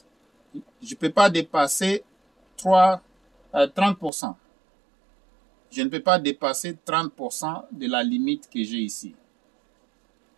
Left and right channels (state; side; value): drops out; left; at 4.1 s